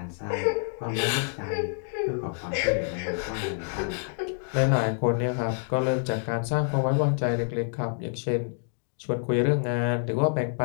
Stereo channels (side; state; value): right; silent; digital silence